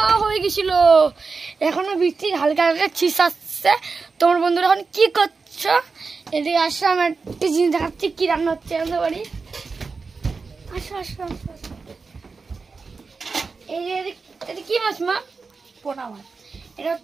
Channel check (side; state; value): left; quieter; 4.5 dB